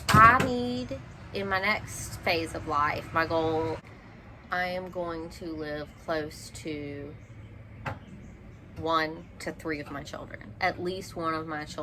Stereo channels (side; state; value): both; identical; correlation 1.00